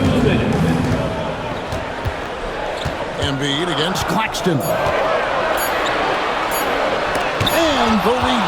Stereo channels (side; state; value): both; identical; correlation 1.00